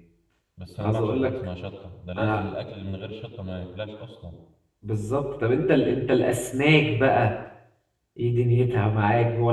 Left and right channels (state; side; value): identical; both; correlation 1.00